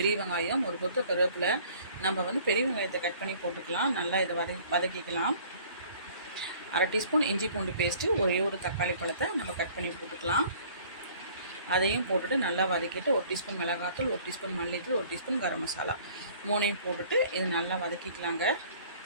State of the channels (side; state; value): both; inverted; correlation -0.53